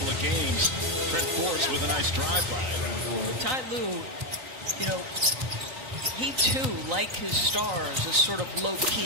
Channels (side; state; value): left; late; 3.9 ms